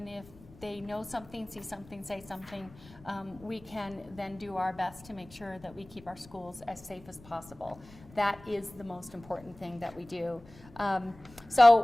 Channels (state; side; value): noise; left; rumble, 22 dB below the sound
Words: if they know something, see something, say something, we can then do our best to make sure that we keep our schools as safe as possible. That is the most important thing that we do.